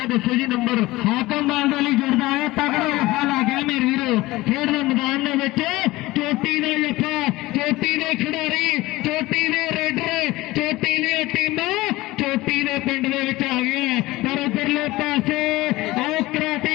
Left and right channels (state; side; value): quieter; right; 19.1 dB